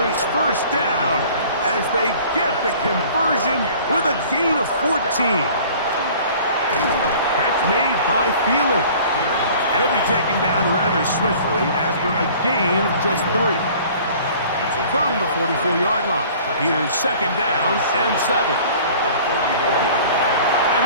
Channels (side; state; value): both; inverted; correlation -0.48